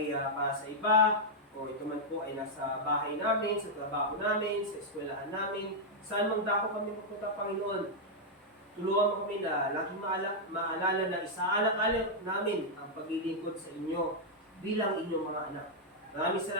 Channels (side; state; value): both; normal; correlation -0.04